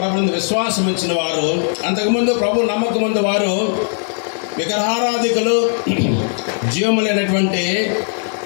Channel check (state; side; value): silent; right; digital silence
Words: విశ్వాసం ఇచ్చిన వారు, అంతకుముందు ప్రభు నమ్మకం ముందు వారు విగ్రహారాధికులు, జీవములైనటువంటి